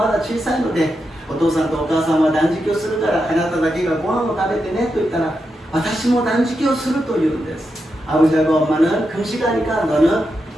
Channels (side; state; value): both; normal; correlation 0.86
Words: だ小さいのでお父さんとお母さんは断食をするからあなただけがご飯を食べてねと言ったら私も断食をすると言うんです。 아버지하고 엄마는 금식하니까 너는